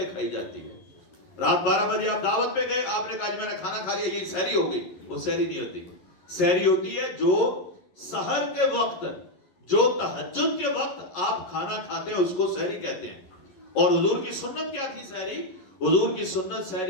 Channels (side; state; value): right; late; 11 ms